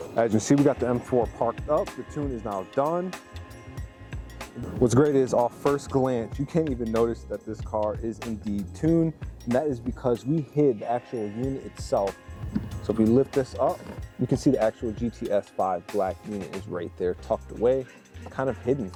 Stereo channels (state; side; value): identical; both; correlation 1.00